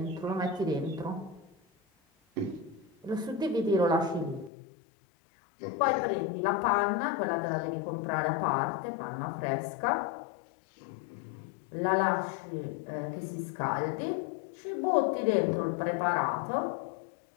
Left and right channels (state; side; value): drops out; right; at 4.5 s